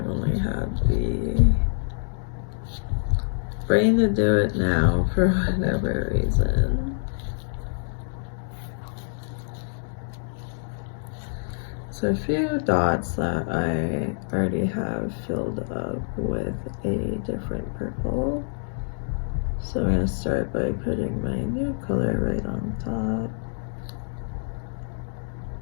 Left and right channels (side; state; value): right; silent; digital silence